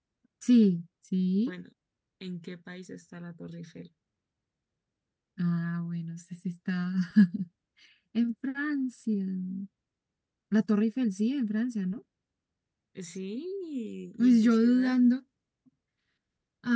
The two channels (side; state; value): both; identical; correlation 1.00